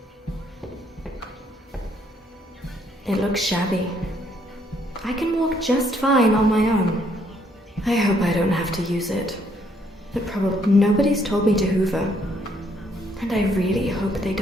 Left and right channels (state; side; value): normal; both; correlation 0.69